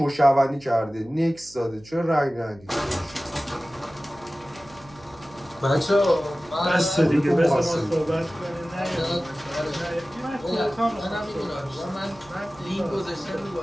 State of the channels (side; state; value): right; noise; hum, 23 dB below the sound